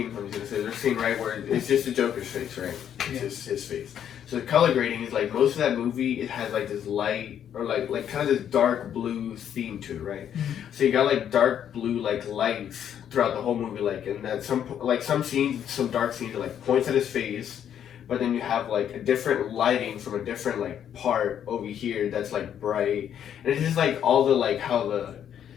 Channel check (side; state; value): right; quieter; 9.4 dB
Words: There's a scene right where it's just the Joker's face, right? It's just his face. So the color grading is like most of that movie. It has like this light or like kind of this dark blue theme to it, right? Mm-hmm. So you got like dark blue like lights throughout the whole movie, like and that some scenes, some dark scenes are like points at his face, but then you have like a different lighting from a different like part over here that's like bright, and it's just like all the like how the